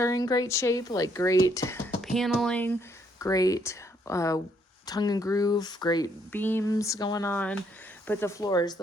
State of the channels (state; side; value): normal; both; correlation 0.70